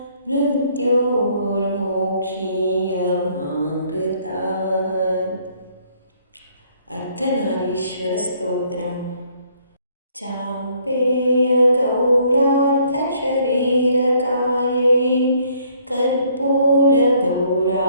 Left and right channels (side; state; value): both; inverted; correlation -0.64